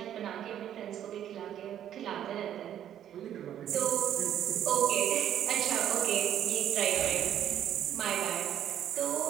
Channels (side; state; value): left; quieter; 10.6 dB